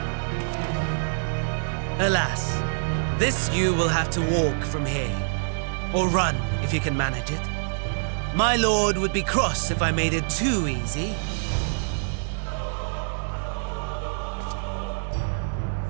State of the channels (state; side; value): silent; left; 61 dB below the other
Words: Alas, this you will have to walk from here. Or run, if you can manage it. My lord would be cross if I made it too easy.